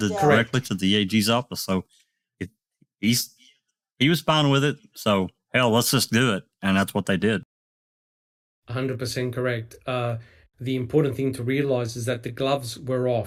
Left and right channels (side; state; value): both; identical; correlation 1.00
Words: yeah. directly to the AG's office, so it, he was fine with it. So hell, let's just do it, and that's what they did. 100% correct. The important thing to realize is that the gloves were